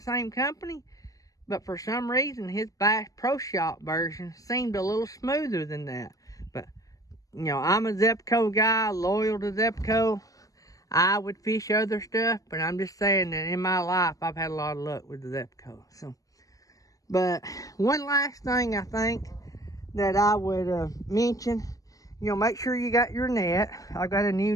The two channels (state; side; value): late; right; 0.17 ms